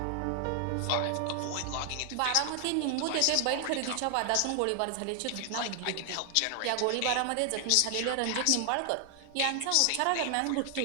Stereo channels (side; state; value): both; different; correlation 0.00